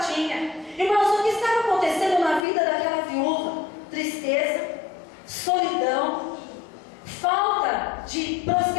Irmãos, o que estava acontecendo na vida daquela viúva? Tristeza, solidão, falta de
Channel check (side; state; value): right; drops out; at 2.4 s